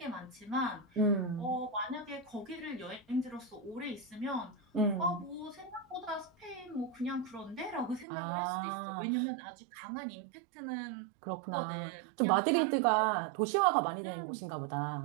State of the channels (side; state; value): left; drops out; at 8.1 s